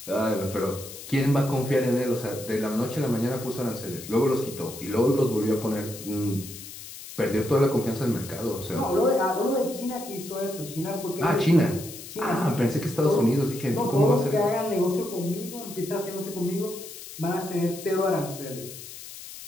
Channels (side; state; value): left; noise; hiss, 13 dB below the sound